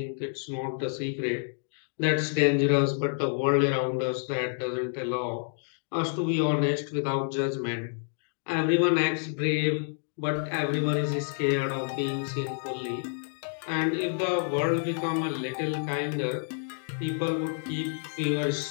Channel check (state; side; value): silent; right; 59 dB below the other